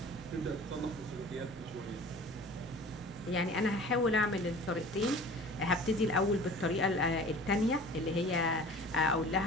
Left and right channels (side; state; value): both; normal; correlation 0.43